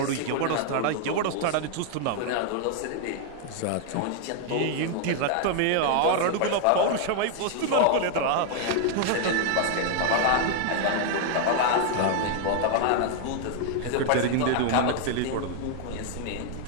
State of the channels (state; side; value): different; both; correlation 0.00